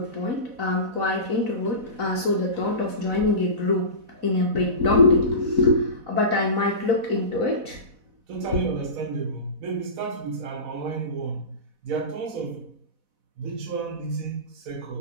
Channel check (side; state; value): left; late; 4.1 ms